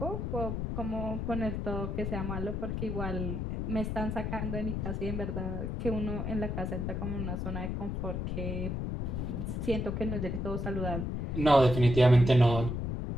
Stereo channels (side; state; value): left; noise; rumble, 2 dB below the sound